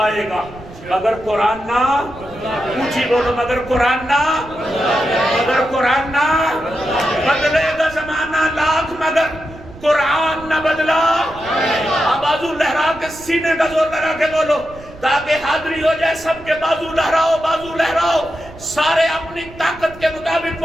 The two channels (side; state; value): right; noise; rumble, 19 dB below the sound